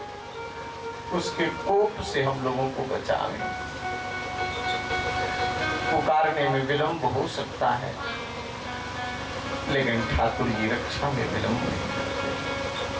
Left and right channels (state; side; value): identical; both; correlation 1.00